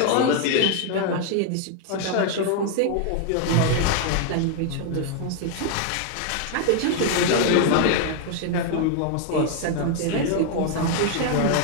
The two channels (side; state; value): both; different; correlation 0.00